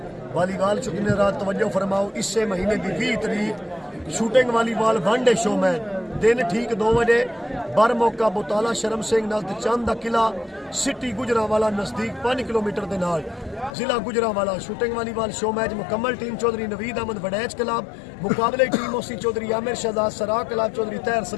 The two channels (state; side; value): drops out; right; at 13.7 s